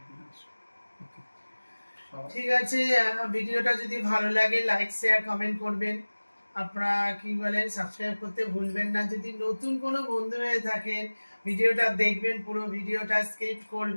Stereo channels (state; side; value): inverted; both; correlation -1.00